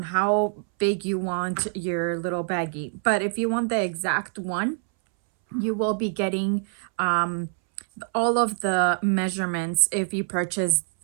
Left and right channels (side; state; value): left; silent; 62 dB below the other